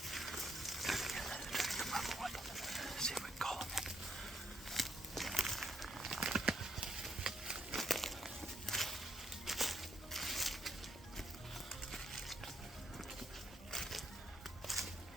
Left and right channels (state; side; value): normal; both; correlation 0.71